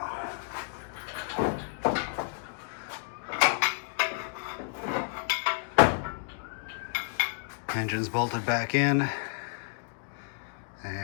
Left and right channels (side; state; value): right; silent; digital silence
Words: Engine's bolted back in,